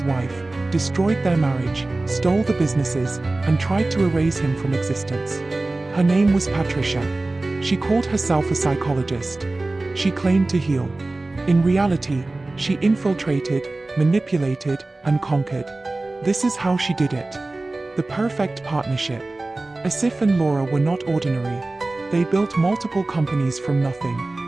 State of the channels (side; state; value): left; quieter; 3.0 dB